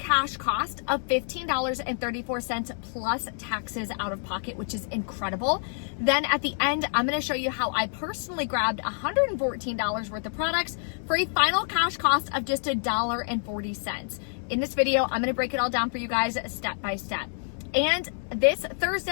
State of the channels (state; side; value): silent; right; 60 dB below the other